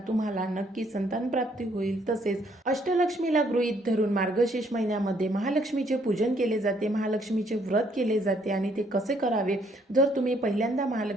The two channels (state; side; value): normal; both; correlation 0.67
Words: तुम्हाला नक्की संतान प्राप्ती होईल। तसेच अष्टलक्ष्मीला गृहीत धरून मार्गशीर्ष महिन्यामध्ये महालक्ष्मीचे पूजन केले जाते, महालक्ष्मीचे व्रत केले जाते। आणि ते कसे करावे, जर तुम्ही पहिल्यांदा